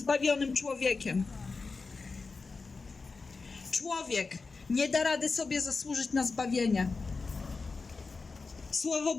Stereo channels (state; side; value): quieter; right; 4.2 dB